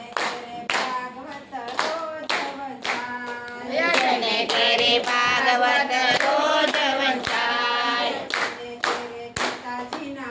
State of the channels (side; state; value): both; identical; correlation 1.00